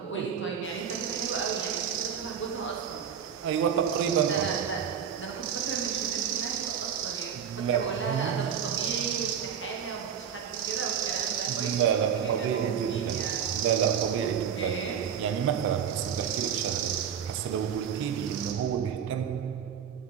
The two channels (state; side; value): quieter; left; 8.0 dB